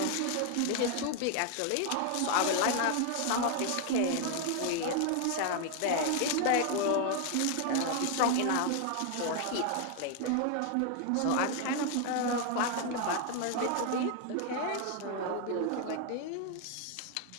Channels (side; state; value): both; different; correlation 0.00